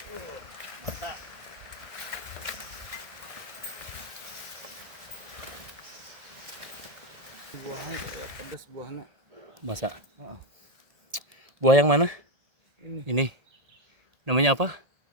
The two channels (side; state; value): left; late; 1.7 ms